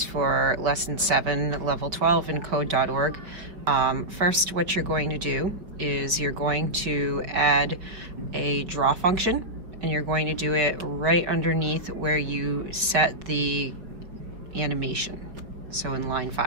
for Lesson 7, Level 12 in Code.org. First, what you're going to do is you're going to add a draw function, and you're going to do it right underneath where you set the animation, so in line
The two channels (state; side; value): late; left; 5.2 ms